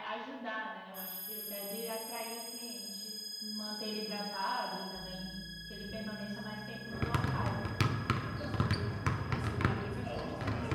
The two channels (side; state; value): both; identical; correlation 1.00